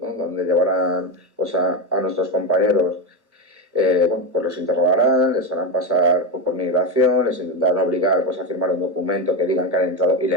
Donde llevarán pues a nuestros compañeros. Bueno, pues los interrogarán, les harán pasar por migración, les intentarán obligar pues, a firmar un documento que digan que han entrado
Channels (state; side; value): late; left; 1.1 ms